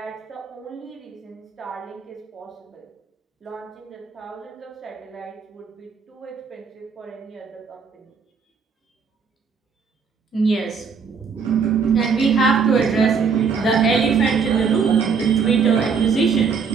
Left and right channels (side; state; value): left; quieter; 5.7 dB